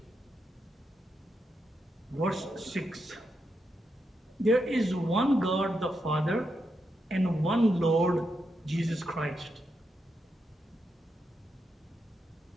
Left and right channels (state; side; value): normal; both; correlation 0.84